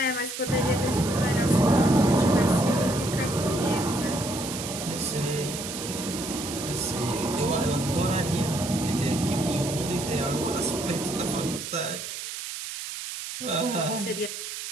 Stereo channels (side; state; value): right; noise; hiss, 7 dB below the sound